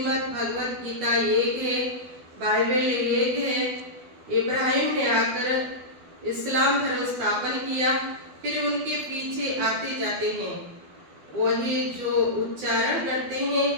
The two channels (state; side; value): late; left; 12 ms